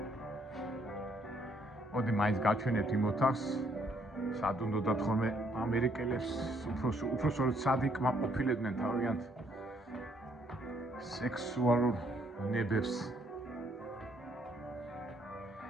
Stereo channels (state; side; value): normal; both; correlation 0.68